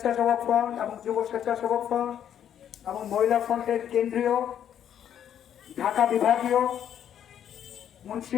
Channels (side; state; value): right; quieter; 9.7 dB